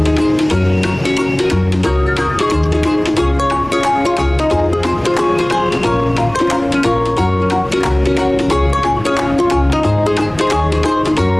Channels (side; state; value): left; noise; rumble, 23 dB below the sound